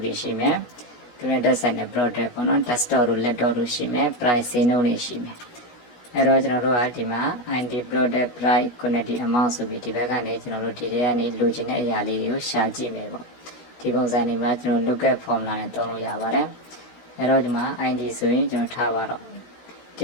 တွေရှိမယ်သူနဲ့တက်ဆိုင်တဲ့ product ပေါ့နော် desktop တို့ laptop တို့ရှိမယ် price ဈေးနှုန်းတွေရှိမယ်အဲ့တော့ကျွန်တော်တို့ကဒီမှာ ID product price quantity amount ဆိုပြီးဒီဘက်ကနေကျွန်တော်တို့ဒီထဲကနေလိုချင်တဲ့အရာလေးတွေကိုရှာကြည့်မယ်ပေါ့ဒီပုံစံတွေမှာကျွန်တော် lookup formula နဲ့သုံးလို့ရပါတယ်အဲ့တော့ဒီမှာ ID ဆိုရင်ကျွန်တော်ထားပါတော့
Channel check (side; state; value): right; late; 16 ms